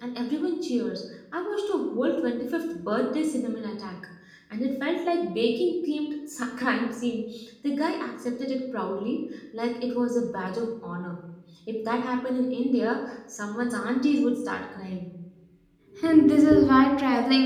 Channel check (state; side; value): identical; both; correlation 1.00